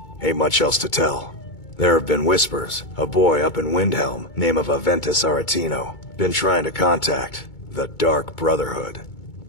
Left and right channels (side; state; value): right; late; 2.2 ms